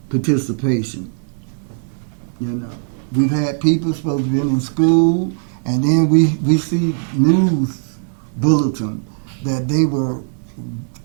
participation. You know, we've had people supposed to be in school, and then we see news bulletin that they were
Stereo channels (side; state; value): left; silent; digital silence